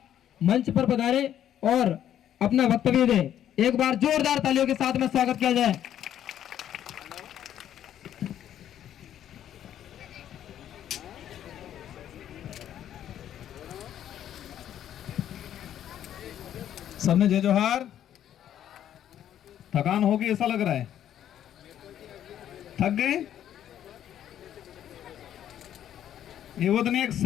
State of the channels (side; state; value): right; quieter; 10.7 dB